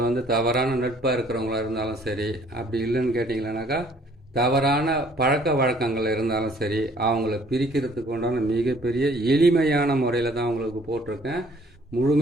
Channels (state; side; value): normal; both; correlation 0.59